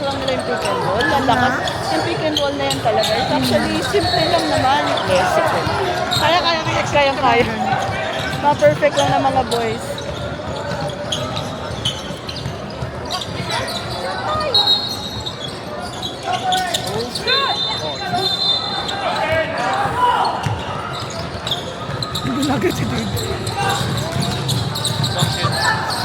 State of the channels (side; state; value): both; identical; correlation 1.00